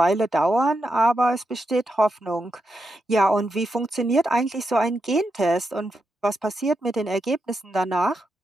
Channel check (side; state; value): both; normal; correlation 0.85